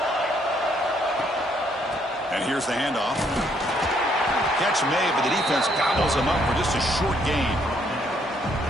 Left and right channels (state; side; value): normal; both; correlation 0.69